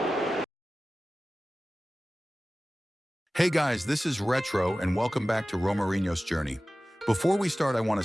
Hey guys, this is Retro and welcome back to Romarinho's journey. Before we start, I want to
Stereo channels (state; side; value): normal; both; correlation 0.96